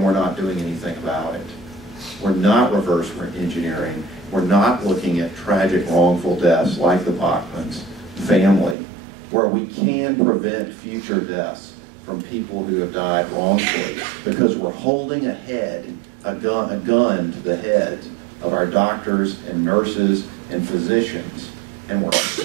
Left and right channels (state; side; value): drops out; left; at 8.8 s